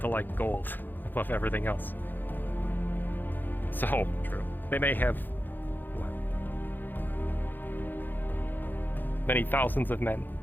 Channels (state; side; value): late; right; 0.090 ms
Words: to like gold above everything else. So, they may have many thousands of men,